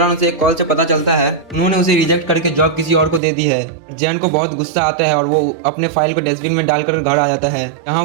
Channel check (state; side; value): drops out; left; at 3.2 s